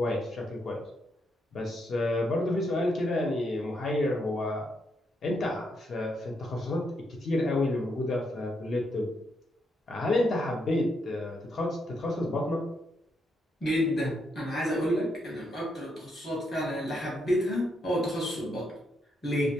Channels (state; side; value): normal; both; correlation 0.78